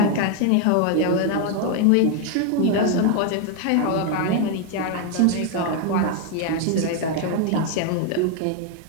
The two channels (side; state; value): both; different; correlation 0.01